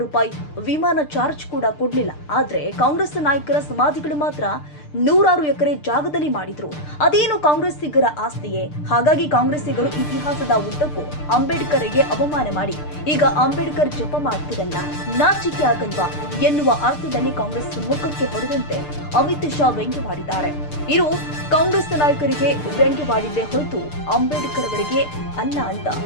ರೂಪಾಯಿ ವಿಮಾನ ಚಾರ್ಜ್ ಕೂಡ ಕೊಡ್ಲಿಲ್ಲ. ಆದ್ರೆ ಕಾಂಗ್ರೆಸ್ ನಾಯಕರ ಸಮಾಧಿಗಳು ಮಾತ್ರ 100 ಎಕರೆ ಜಾಗದಲ್ಲಿ ಮಾಡಿದ್ರು. ಅದೇನು ಕಾಂಗ್ರೆಸ್ಸಿಗರ ಆಸ್ತಿಯೇ? ಹಾಗಾಗಿ ಕಾಂಗ್ರೆಸ್ಸಿಗರು ಇತಿಹಾಸದ ಉದ್ದಕ್ಕೂ ಅಂಬೇಡ್ಕರ್ಗೆ ಅವಮಾನ ಮಾಡಿ ಈಗ ಅಂಬೇಡ್ಕರ್ ಜಪ ಮಾಡ್ತಿರಲ್ಲ, ನಾಚಿಕೆ ಆಗಲ್ವಾ ಎನ್ನುವ ಅರ್ಥದಲ್ಲಿ ಕಾಂಗ್ರೆಸ್ ಮುಖಕ್ಕೆ ಹೊಡೆದಂತೆ ಅಮಿತ್ ಶಾ ವ್ಯಂಗ್ಯವಾಡಿದ್ದಾರೆ. ಇದು ಕಾಂಗ್ರೆಸ್ ನಾಯಕರಿಗೆ ವ್ಯಂಗ್ಯವಾಡಿದ್ದೇ ಹೊರತು ಅಂಬೇಡ್ಕರ್ ಅವರಿಗೆ ಅಲ್ಲ ಅಂತ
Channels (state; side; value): late; right; 6.7 ms